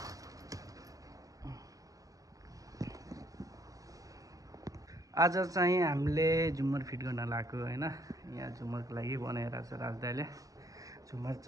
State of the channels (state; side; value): late; left; 0.17 ms